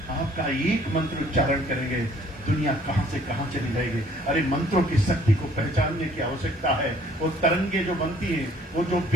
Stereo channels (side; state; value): both; normal; correlation 0.59